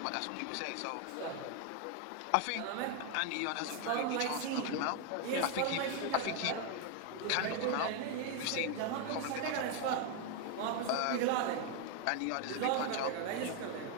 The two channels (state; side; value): different; both; correlation 0.01